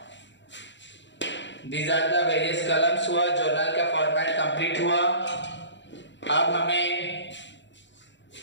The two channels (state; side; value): late; right; 0.53 ms